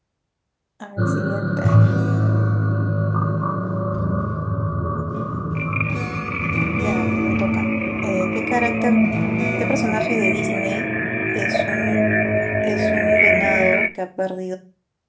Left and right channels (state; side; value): identical; both; correlation 1.00